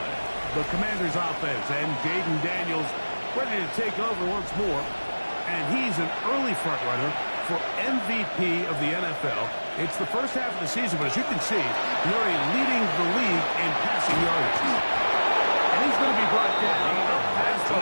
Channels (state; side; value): inverted; both; correlation -1.00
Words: The Commanders' offense and Jaden Daniels ready to take over once more. And he's an early front runner for MVP of the NFL. It's the first half of the season, but as you can see, Murray leading the league in passing yardage. And he's going to be brought down past the